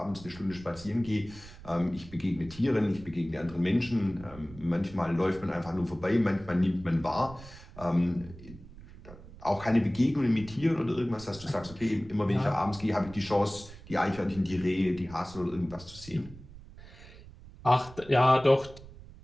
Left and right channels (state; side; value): noise; right; rumble, 18 dB below the sound